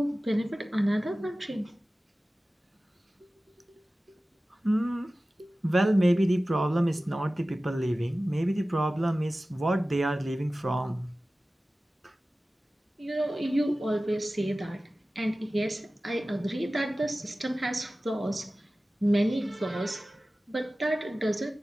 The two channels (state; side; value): normal; both; correlation 0.96